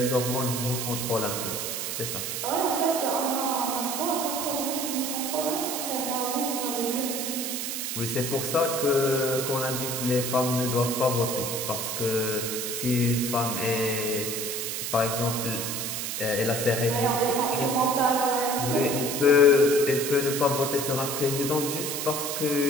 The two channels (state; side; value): noise; right; hiss, 3 dB below the sound